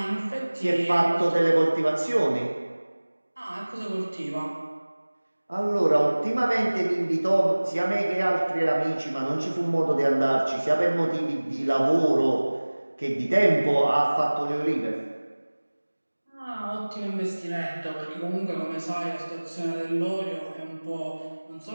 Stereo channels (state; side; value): inverted; both; correlation -1.00